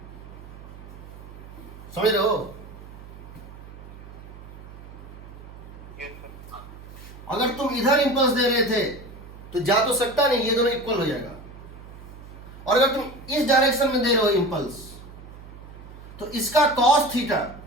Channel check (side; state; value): right; noise; hum, 16 dB below the sound